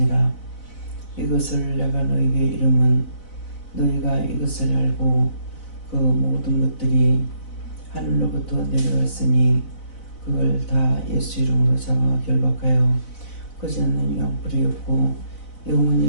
이것을 내가 너희에게 이름은 너희가 이것을 알고 그 모든 것들이 하늘로부터 내려왔으니 그걸 다 예수 이름으로 잡아 결박하여 거지 않는 유황불이 없고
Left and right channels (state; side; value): late; right; 4.0 ms